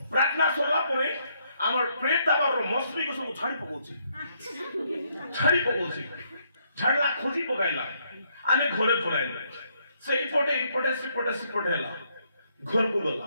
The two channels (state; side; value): inverted; both; correlation -0.72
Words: ପ୍ରାର୍ଥନା ସରିଲା ପରେ আমার প্রেত দাবার মশলিকে সব ছাড়ি পকাউছি, ছাড়লা খোঁজি পকাইলা। আমি ঘরে পড়াইলা, সেইপটে এইপটে সেপটে হেলা। ঘরকু